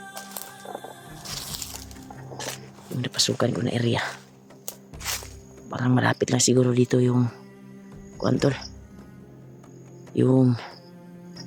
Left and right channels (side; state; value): both; identical; correlation 1.00